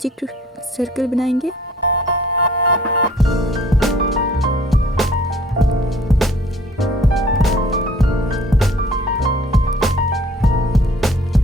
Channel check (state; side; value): normal; both; correlation 0.54